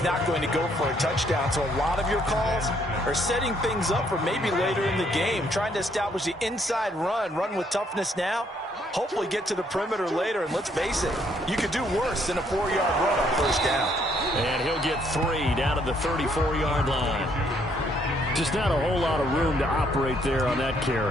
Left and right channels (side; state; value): both; normal; correlation 0.69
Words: not going to go for a touchdown. So a lot of your calls are setting things up for maybe later in the game, trying to establish the inside run with toughness now, hopefully get to the perimeter later. And let's face it, you could do worse than a 4-yard run on first down. And he'll get 3 down at the 34-yard line. Just not a whole lot of room to operate there on that